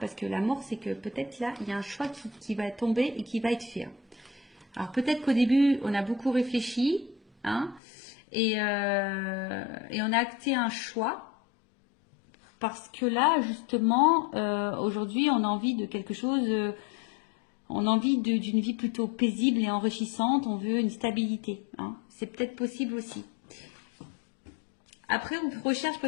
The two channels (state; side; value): drops out; right; at 7.8 s